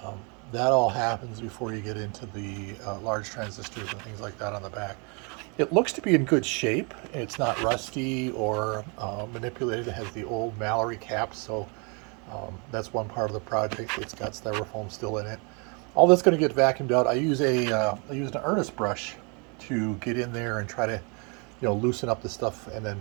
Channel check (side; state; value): left; quieter; 33.7 dB